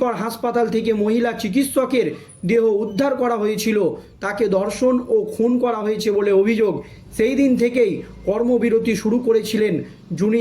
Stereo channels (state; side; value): identical; both; correlation 1.00